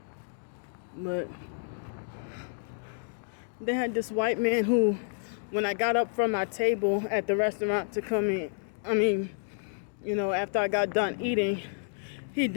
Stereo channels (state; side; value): silent; right; digital silence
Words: But they had this white man who, when I got up from my table at the restaurant to come in, after I got done eating, he